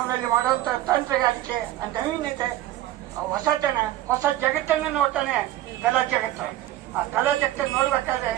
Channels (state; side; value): quieter; left; 14.5 dB